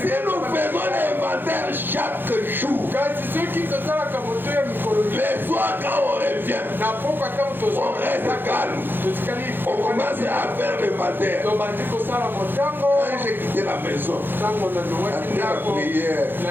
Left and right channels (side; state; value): left; late; 0.098 ms